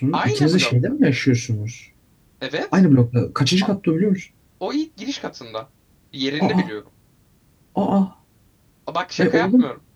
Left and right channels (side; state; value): both; identical; correlation 1.00